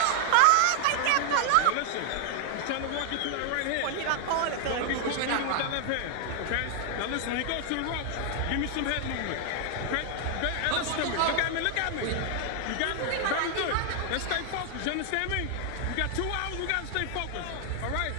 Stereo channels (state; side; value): different; both; correlation 0.00